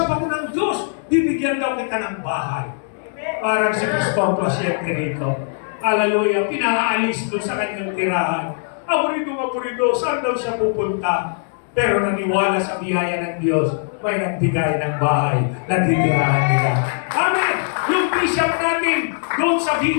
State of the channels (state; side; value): silent; right; 65 dB below the other